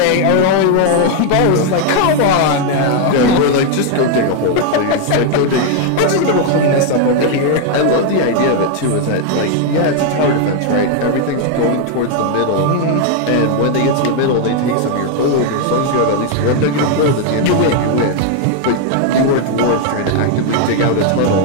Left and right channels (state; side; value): different; both; correlation 0.00